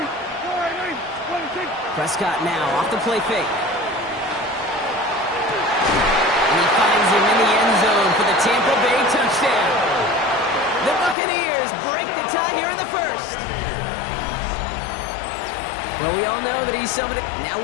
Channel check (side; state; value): right; drops out; at 11.2 s